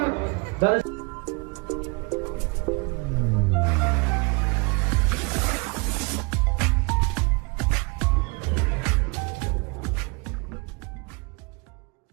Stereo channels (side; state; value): left; quieter; 30.4 dB